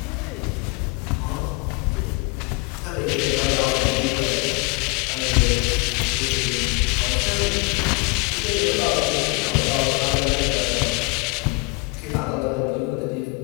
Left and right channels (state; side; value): quieter; right; 28.5 dB